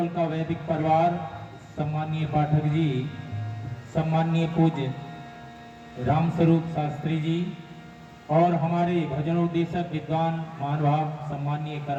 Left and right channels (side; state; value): both; identical; correlation 1.00